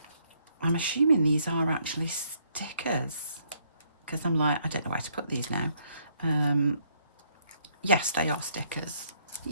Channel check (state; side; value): inverted; both; correlation -0.70